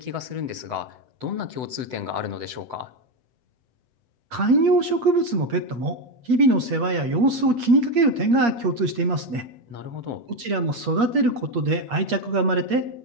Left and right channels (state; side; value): late; left; 8.6 ms